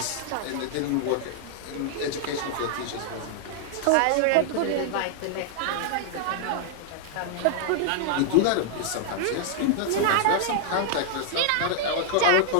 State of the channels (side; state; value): both; different; correlation -0.01